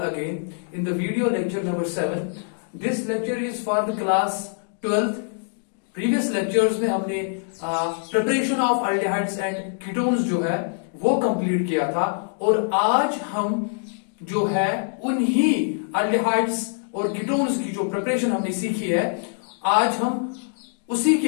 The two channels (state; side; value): silent; right; digital silence